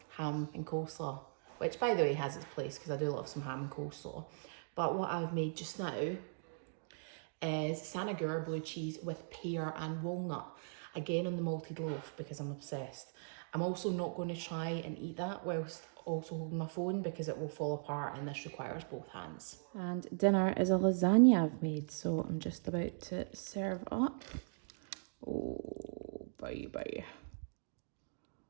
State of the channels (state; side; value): silent; left; digital silence